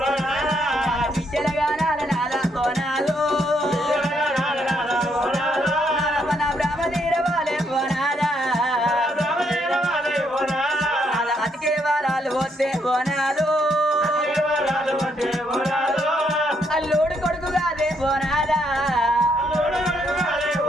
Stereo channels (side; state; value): both; normal; correlation 0.74